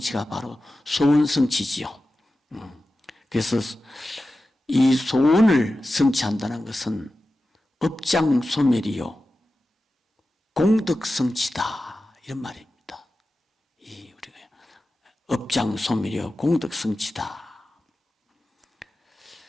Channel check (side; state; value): both; normal; correlation 0.93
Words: 바로 소원 성취지요. 그래서 이 소원을 성취한다는 것은 업장소멸이요 공덕성취다 이런 말입니다. 이 우리가 업장소멸이요 공덕성취다.